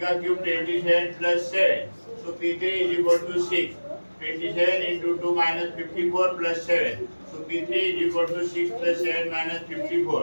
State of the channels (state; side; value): inverted; both; correlation -1.00